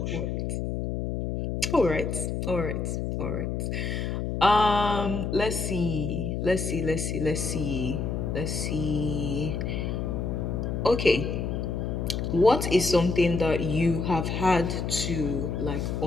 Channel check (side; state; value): left; noise; hum, 2 dB below the sound